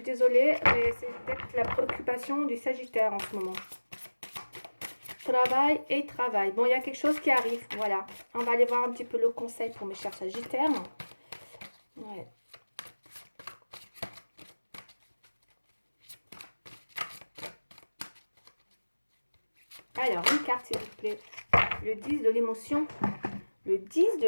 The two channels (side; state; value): both; inverted; correlation -1.00